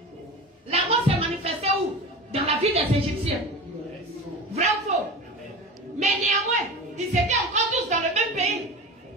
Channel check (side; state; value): both; normal; correlation 0.30